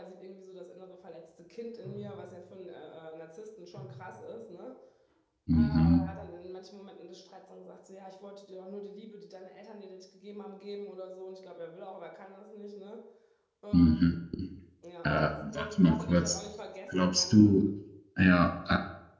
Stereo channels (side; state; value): both; identical; correlation 1.00